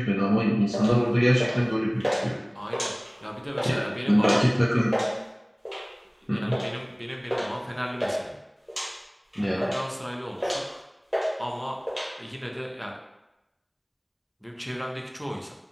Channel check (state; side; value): identical; both; correlation 1.00